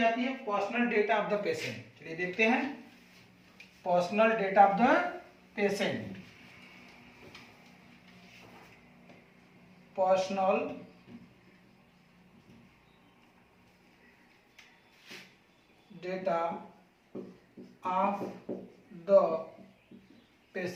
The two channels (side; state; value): both; identical; correlation 1.00